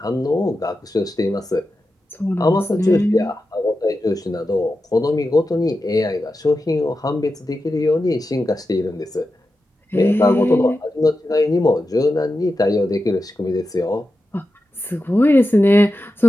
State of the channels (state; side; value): normal; both; correlation 0.91